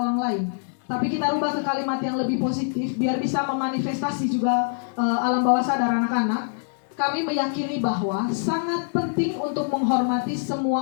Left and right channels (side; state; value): right; silent; 62 dB below the other